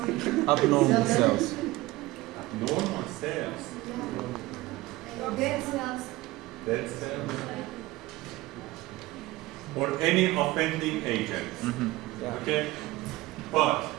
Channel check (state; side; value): quieter; left; 18.9 dB